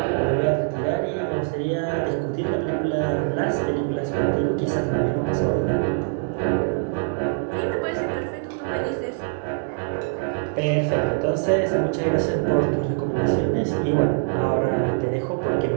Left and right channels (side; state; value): left; silent; 63 dB below the other